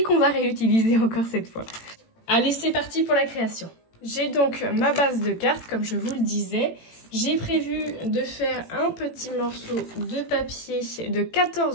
qu'on va réutiliser encore cette fois. Allez, c'est parti pour la création. J'ai donc ma base de cartes comme je vous le disais. J'ai prévu de faire un petit morceau de papier de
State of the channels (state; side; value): late; right; 18 ms